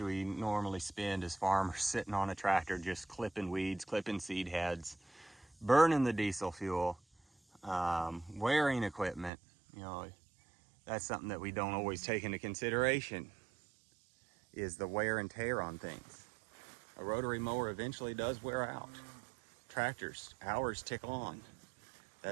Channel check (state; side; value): drops out; left; at 9.3 s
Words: we normally spend as farmers sitting on a tractor just clipping weeds, clipping seed heads, burning the diesel fuel, wearing equipment. You know, that's something that we don't always take into consideration, is the wear and tear on things. A rotary mower eventually does wear out. Tractors, hours tick on.